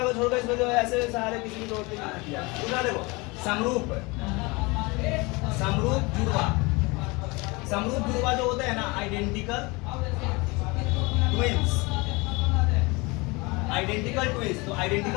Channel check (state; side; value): quieter; right; 25.8 dB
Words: को छोड़कर इसमें जो है ऐसे सहारे किसी की जरूरत नहीं किया। दूसरा देखो, समरूप जुड़वा जो होते हैं ना, आइडेंटिकल ट्विंस। तो